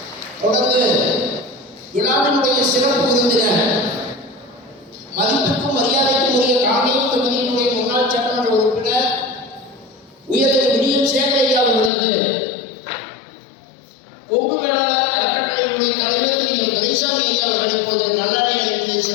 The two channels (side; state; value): right; drops out; at 11.9 s